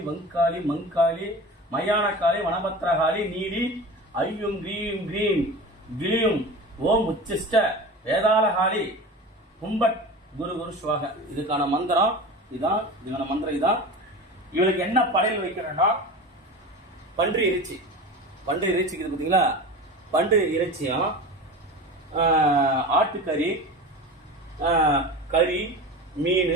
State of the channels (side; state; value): both; normal; correlation 0.32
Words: வங்காளி மங்காளி மயான வனபத்திரகாளி நீலி ஐயும் கிரீம் கிரீம் கிளியும் ஓம் உச்சிஷ்ட வேதாளகாளி கும்பட் குரு குரு சுவாக. இதுக்கான மந்திரம் இதான். இதுக்கான மந்திரம் இதான். இவளுக்கு என்ன படையல் வைக்கிறேன்னா பன்றி இறைச்சி. பன்றி இறைச்சிக்கு பார்த்தீங்களா, பன்றி இறைச்சியும் ஆட்டுக்கறி, கறி, மீன்,